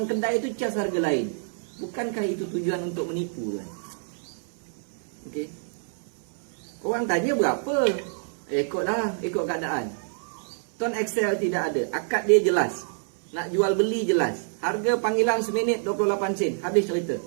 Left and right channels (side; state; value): left; silent; 60 dB below the other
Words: kedai itu cas harga lain. Bukankah itu tujuan untuk menipu tuan? Okey. Orang tanya berapa? Ikutlah, ikut keadaan. Tuan Excel tidak ada. Akad dia jelas. Nak jual beli jelas. Harga panggilan seminit 28 sen. Habis cerita.